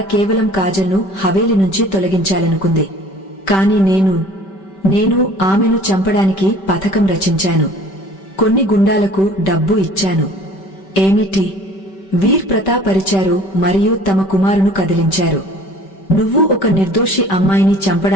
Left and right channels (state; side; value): late; right; 5.2 ms